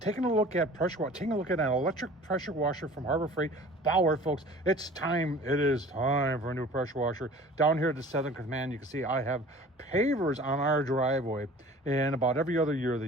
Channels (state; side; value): normal; both; correlation 0.45